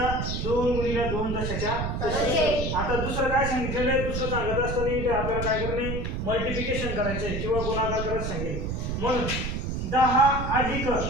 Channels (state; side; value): noise; right; rumble, 2 dB below the sound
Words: 2 गुणिले 2 दशाच्या तसे. आता दुसरं काय सांगितलेलं आहे दुसरं सांगत असताना इथे आपल्याला काय करणे मल्टिप्लिकेशन करायचं आहे किंवा गुणाकार करायला सांगेल. म्हणून 10 अधिक